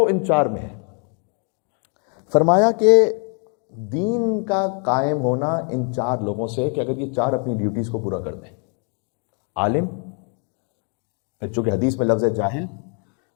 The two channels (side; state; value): right; quieter; 39.9 dB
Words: ان چار میں ہے۔ فرمایا کہ دین کا قائم ہونا ان چار لوگوں سے، کہ اگر یہ چار اپنی ڈیوٹیز کو پورا کر دیں، عالم، پھر چونکہ حدیث میں لفظ ہے جاہل،